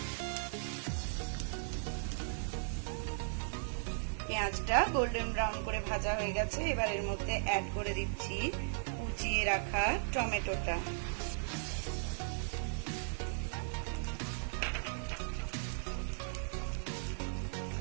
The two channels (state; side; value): silent; left; digital silence